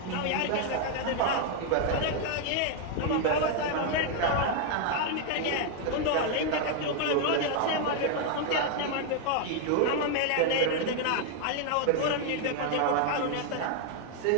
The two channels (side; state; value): both; different; correlation 0.00